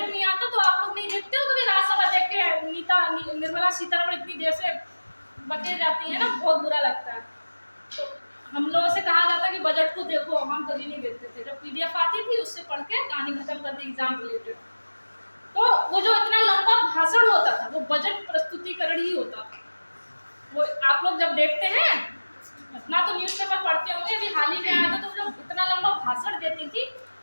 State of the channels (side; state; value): both; inverted; correlation -1.00